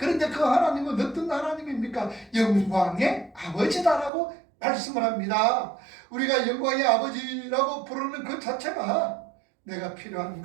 그 하나님은 어떤 하나님입니까? 영광의 아버지다라고 말씀을 합니다. 우리가 영광의 아버지라고 부르는 그 자체가 내가 필요한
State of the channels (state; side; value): drops out; left; at 4.1 s